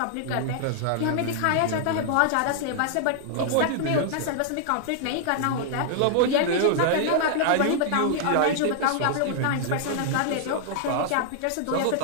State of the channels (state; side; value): different; both; correlation -0.01